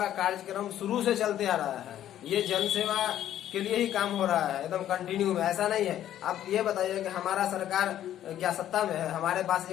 कार्यक्रम शुरू से चलते आ रहा है। ये जन सेवा के लिए ही काम हो रहा है, एकदम कंटिन्यू में। ऐसा नहीं है। आप ये बताइए कि हमारा सरकार क्या सत्ता में है? हमारे पास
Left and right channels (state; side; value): quieter; right; 11.7 dB